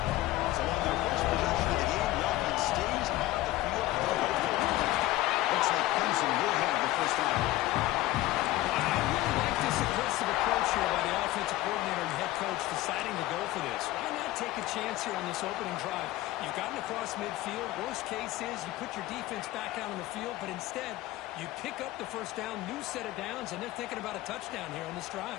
So on their first possession of the game, the offense stays on the field. Looks like Clemson will have the first down. I really like this aggressive approach here by the offensive coordinator and head coach deciding to go for this. Why not take a chance here on this opening drive? You've gotten across midfield. Worst case is you put your defense back out on the field, but instead you pick up the first down, new set of downs, and they're thinking about a touchdown here on this drive.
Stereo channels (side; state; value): right; quieter; 16.7 dB